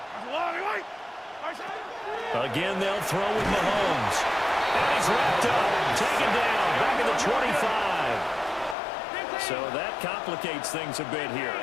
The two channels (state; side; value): drops out; right; at 8.8 s